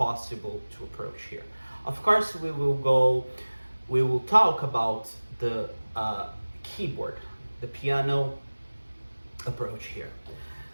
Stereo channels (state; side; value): inverted; both; correlation -1.00